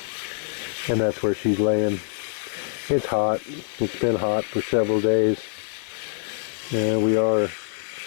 And that's where she's laying. It's hot. It's been hot for several days. And we are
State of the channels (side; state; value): right; silent; digital silence